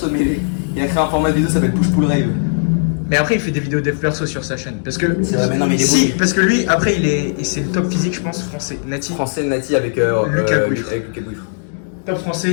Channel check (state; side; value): silent; right; digital silence